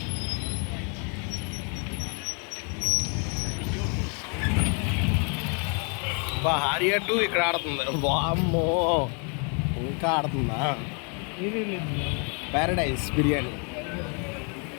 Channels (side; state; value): right; quieter; 37.6 dB